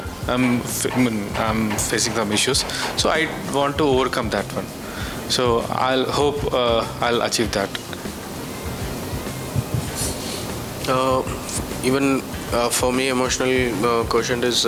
I'm facing some issues, so I want to overcome that one. So I'll hope I'll achieve that. Even for me, emotional quotient is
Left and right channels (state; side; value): identical; both; correlation 1.00